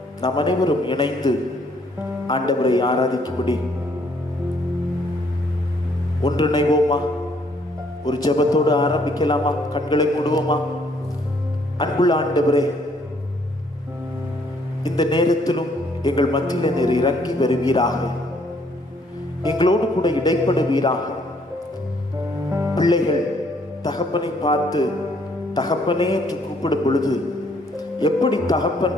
நாம் அனைவரும் இணைந்து ஆண்டவரை ஆராதிக்கும்படி ஒன்றிணைவோமா? ஒரு ஜெபத்தோடு ஆரம்பிக்கலாமா? கண்களை மூடுவோமா? அன்புள்ள ஆண்டவரே, இந்த நேரத்திலும் எங்கள் மத்தியில் நீர் இறங்கி வருவீராக, எங்களோடு கூட இடைப்படுவீராக. பிள்ளைகள் தகப்பனை பார்த்து தகப்பனே என்று கூப்பிடும் பொழுது எப்படி தகப்பன்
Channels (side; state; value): both; normal; correlation 0.66